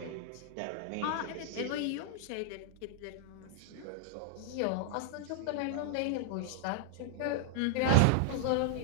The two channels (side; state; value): both; different; correlation 0.00